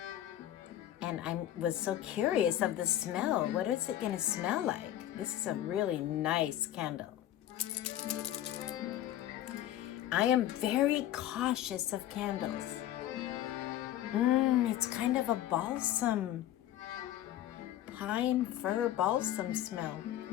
And I was so curious of the smell. What is it going to smell like? This is a really nice candle. I am very cautious of candles. It's kind of a balsam, pine fir balsam smell.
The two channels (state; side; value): quieter; right; 12.6 dB